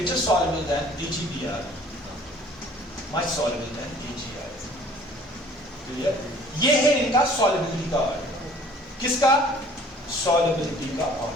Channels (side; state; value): both; normal; correlation 0.53